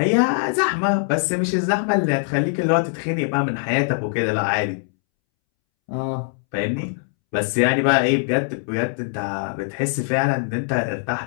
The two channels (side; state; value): right; silent; 64 dB below the other